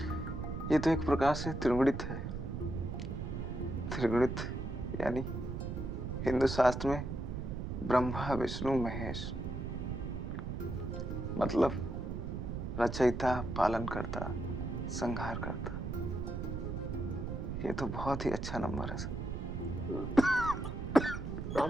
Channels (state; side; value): noise; right; rumble, 4 dB below the sound